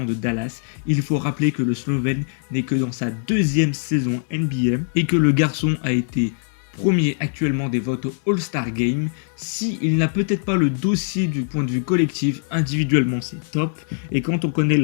de Dallas, il faut rappeler que le Slovène n'est que dans sa deuxième saison NBA et que le garçon a été premier actuellement des votes au All-Star Game. Il n'a peut-être pas le dossier du point de vue collectif, individuellement c'est top. Et quand on connaît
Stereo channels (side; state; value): right; silent; digital silence